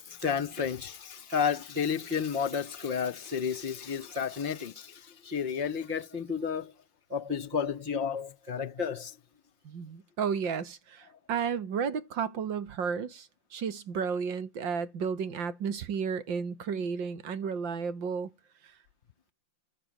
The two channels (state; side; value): late; left; 5.7 ms